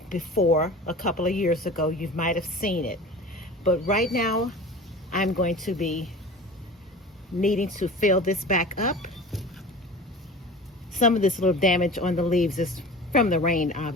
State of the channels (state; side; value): normal; both; correlation 0.37